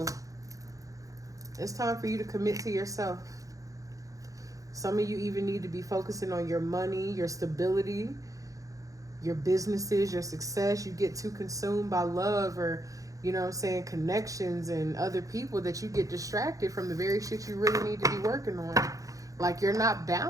It's time for you to commit to yourself. Some of you even need to be focusing on your money, your stability, your businesses, your success. You get too consumed by love or, you know what I'm saying, connections and other people that you get distracted from the very shit you really need to be working on. Like you're not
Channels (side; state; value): left; late; 0.16 ms